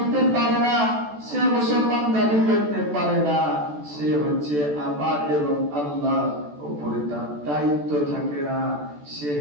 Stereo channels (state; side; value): late; left; 14 ms